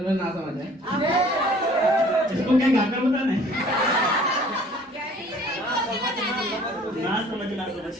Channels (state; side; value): normal; both; correlation 0.53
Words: ना समझ है। इसको क्या गाकर बताना है? ना समझ